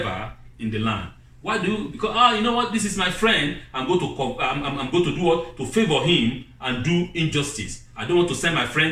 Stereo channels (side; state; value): both; identical; correlation 1.00